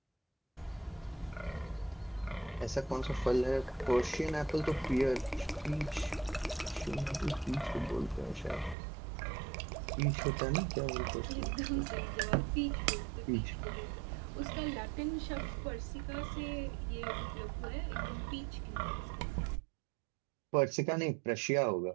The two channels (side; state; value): left; drops out; at 8.8 s